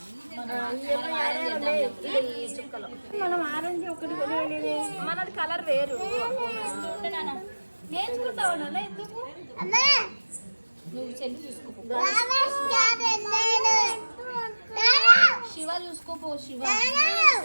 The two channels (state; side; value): inverted; both; correlation -1.00